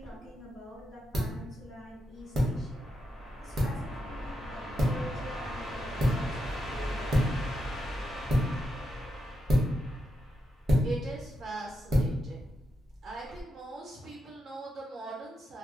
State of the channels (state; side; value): normal; both; correlation 0.86